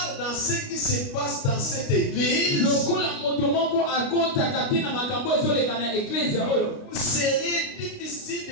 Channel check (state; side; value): late; right; 29 ms